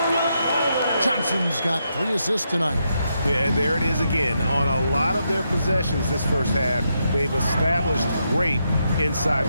Johnson's got 3 assists tonight. Yeah, and there it is again. On a lot of their possessions this first half, they've established great inside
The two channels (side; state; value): both; inverted; correlation -0.81